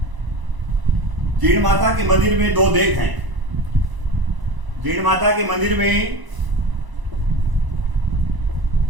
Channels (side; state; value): left; late; 1.0 ms